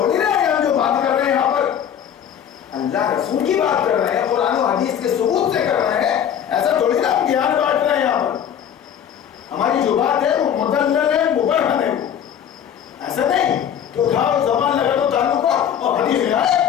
نہ ہے ہم جو بات کر رہے ہیں یہاں پر, اللہ رسول کی بات کر رہے ہیں, قرآن و حدیث کے ثبوت سے کر رہے ہیں. ایسا تھوڑی نا ہم گیان بانٹ رہے ہیں یہاں پر. ہماری جو بات ہے وہ مدلل ہے, مبرہن ہے. ایسا نہیں کہ اٹھاؤ زبان لگا دو تعلق کو اور حدیث میں آئے.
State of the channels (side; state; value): right; quieter; 9.1 dB